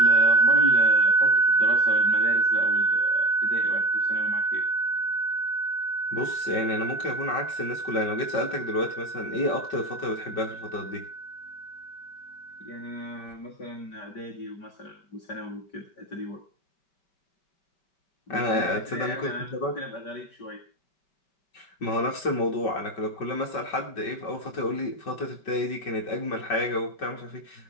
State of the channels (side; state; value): right; late; 5.3 ms